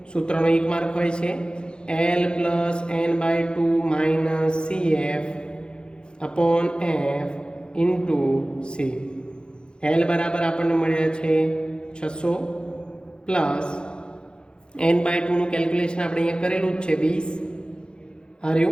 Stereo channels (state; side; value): late; right; 0.050 ms